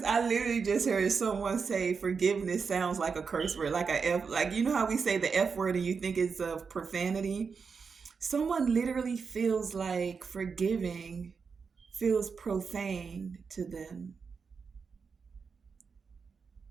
I literally just heard someone say forgiveness sounds like a curse word, like a F, like you know how we say the F word and you think it's of profanity? Someone literally feels like forgiving feels profane to them.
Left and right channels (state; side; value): quieter; left; 5.5 dB